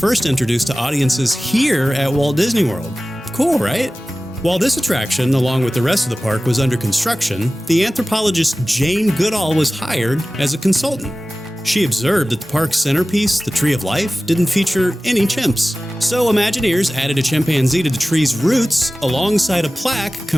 introduced to audiences here at Walt Disney World. Cool, right? While this attraction, along with the rest of the park, was under construction, the anthropologist Jane Goodall was hired as a consultant. She observed that the park's centerpiece, the Tree of Life, didn't feature any chimps. So Imagineers added a chimpanzee to the tree's roots alongside a plaque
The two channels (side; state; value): both; normal; correlation 0.96